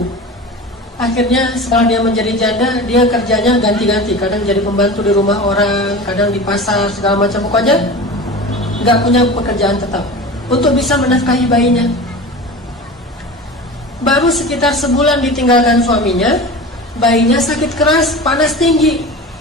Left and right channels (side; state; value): both; normal; correlation 0.33